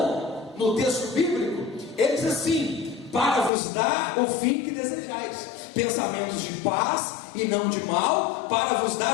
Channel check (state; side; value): drops out; right; at 3.5 s